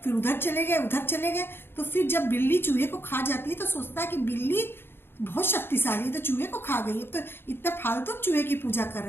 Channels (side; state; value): right; late; 0.11 ms